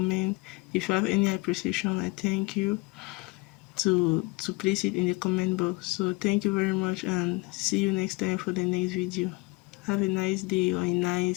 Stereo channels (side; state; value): right; quieter; 24.7 dB